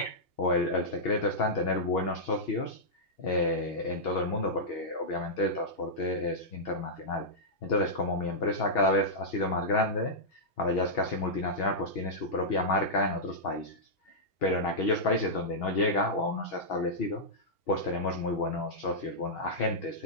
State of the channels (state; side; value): late; right; 2.8 ms